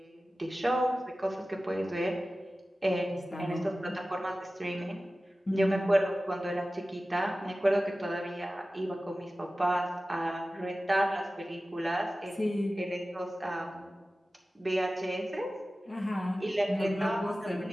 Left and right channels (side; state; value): both; normal; correlation 0.96